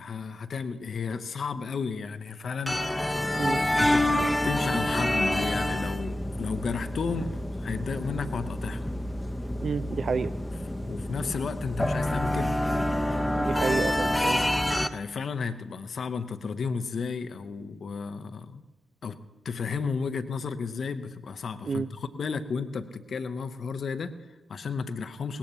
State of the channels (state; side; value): normal; both; correlation 0.92